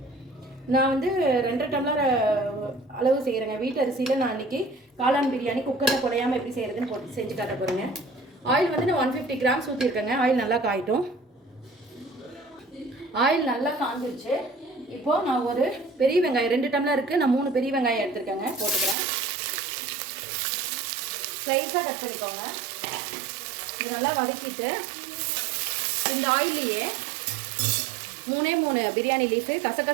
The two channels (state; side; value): drops out; left; at 18.9 s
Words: நான் வந்து 2 டம்ளர் அளவு செய்கிறேங்க. வீட்டு அரிசியில் நான் இன்னைக்கு காளான் பிரியாணி குக்கரில் குழையாமல் எப்படி செய்கிறதுன்னு போட்டு செஞ்சு காட்ட போகிறேங்க. ஆயில் வந்து நான் 150 கிராம்ஸ் ஊற்றிருக்கேங்க. ஆயில் நல்லா காயிட்டும். ஆயில் நல்லா காஞ்சிருச்சு. இப்போ நான் ஒரு பெரிய வெங்காயம் 2 டம்ளர் இருக்குது, நான் 3 பெரிய வெங்காயம் எடுத்துருக்கேங்க, போட்டுக்கிறேன். ஸ்லைஸாக கட் பண்ணிக்கோங்க. இது நல்லா வதக்கிட்டு இந்த ஆயிலையே 3 பிரியாணி லீஃபு,